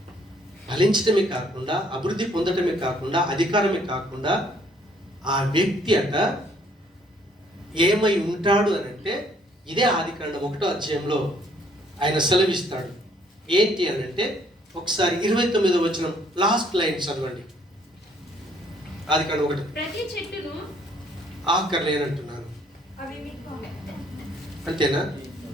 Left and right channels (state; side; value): normal; both; correlation 0.64